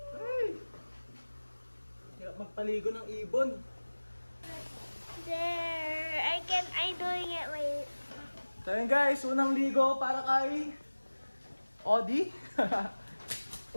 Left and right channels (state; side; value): inverted; both; correlation -1.00